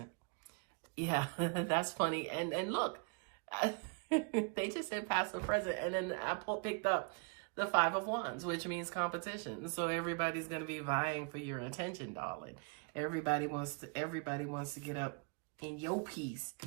Yeah, that's funny. And look, they just said past and present. And then I picked up the 5 of Wands, which means competition. So everybody's going to be vying for your attention, darling. Everybody wants to get up in your piece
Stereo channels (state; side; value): quieter; left; 35.2 dB